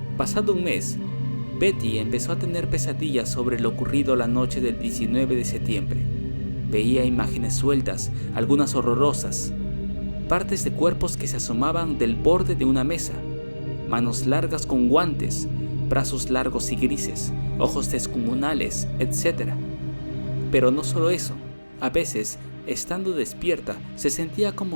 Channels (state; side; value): inverted; both; correlation -1.00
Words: Pasado un mes, Betty empezó a tener pesadillas sobre lo ocurrido la noche del 19 de septiembre. Veía imágenes sueltas, algunas horrorosas, partes de cuerpos que se asomaban del borde de una mesa, manos largas con guantes, brazos largos y grises, ojos descomunales, etc. Pero no solo eso, a veces, estando despierta, se sentía